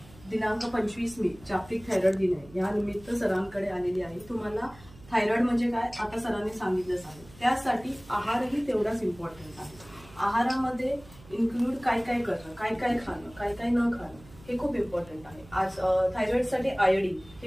दिनांक 25 मे जागतिक थायरॉइड दिन आहे, या निमित्त सरांकडे आलेली आहे. तुम्हाला थायरॉइड म्हणजे काय आता सरांनी सांगितलंच आहे. त्यासाठी आहारही तेवढाच इम्पॉर्टंट आहे. आहारामध्ये इन्क्लूड काय काय करणं, काय काय खाणं, काय काय न खाणं हे खूप इम्पॉर्टंट आहे. आज थायरॉइडसाठी आयोडीन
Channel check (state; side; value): noise; right; hum, 22 dB below the sound